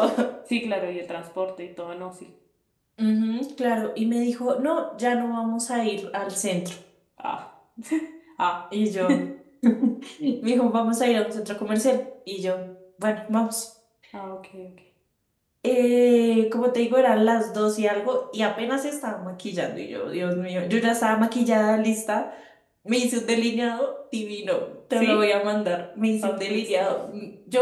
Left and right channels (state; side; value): identical; both; correlation 1.00